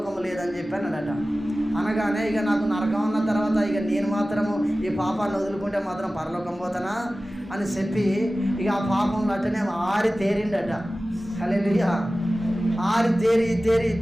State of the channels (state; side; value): normal; both; correlation 0.96